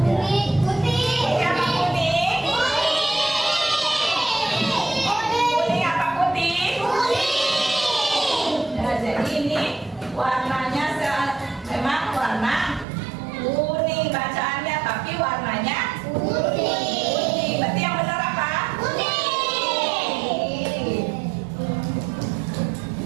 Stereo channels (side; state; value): left; drops out; at 12.9 s